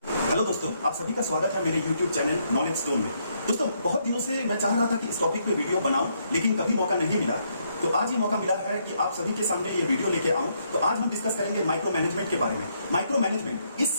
Hello दोस्तों, आप सभी का स्वागत है मेरे YouTube चैनल नॉलेज स्टोन में। दोस्तों, बहुत दिनों से मैं चाह रहा था कि इस टॉपिक पे वीडियो बनाऊं, लेकिन कभी मौका नहीं मिला। तो आज ये मौका मिला है कि आप सभी के सामने ये वीडियो लेके आऊं। तो आज हम डिस्कस करेंगे माइक्रो मैनेजमेंट के बारे में। माइक्रो मैनेजमेंट इस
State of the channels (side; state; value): both; inverted; correlation -0.74